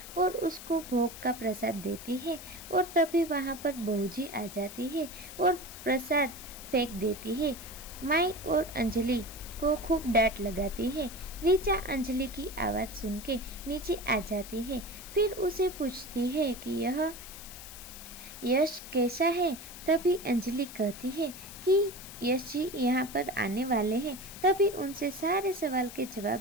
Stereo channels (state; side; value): noise; left; hiss, 13 dB below the sound